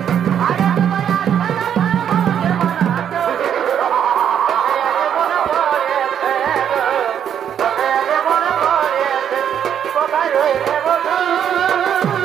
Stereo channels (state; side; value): quieter; left; 9.0 dB